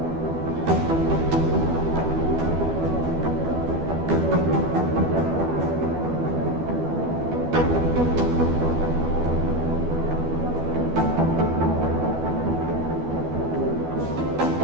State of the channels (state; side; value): late; left; 12 ms